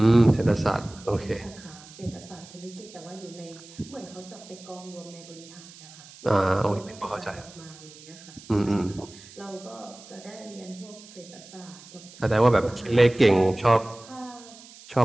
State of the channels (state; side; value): noise; right; hiss, 20 dB below the sound